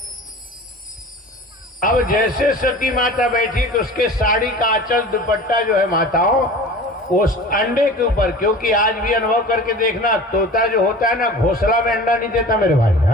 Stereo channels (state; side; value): normal; both; correlation 0.39